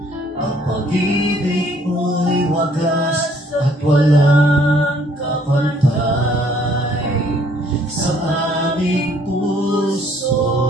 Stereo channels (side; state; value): both; normal; correlation 0.62